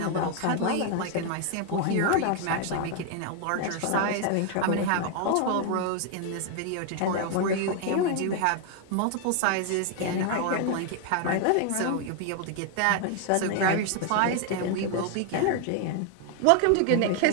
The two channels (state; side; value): different; both; correlation 0.00